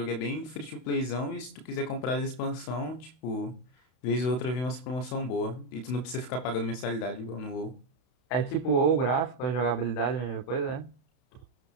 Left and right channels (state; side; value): late; right; 32 ms